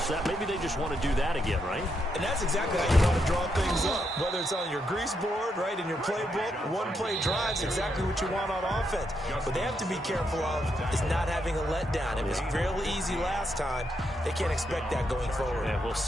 That maybe they just want to do that again, right? And that's exactly how you want to draw things up. Whether it's on your grease board, right, in your playbook, one play drive's exactly what you want on offense. What they have to be careful of is not having a letdown. It was fairly easy last time. They can't expect that going forward. Yeah, we'll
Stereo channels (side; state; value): both; normal; correlation 0.80